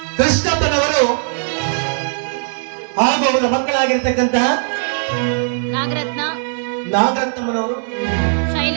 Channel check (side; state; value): left; silent; digital silence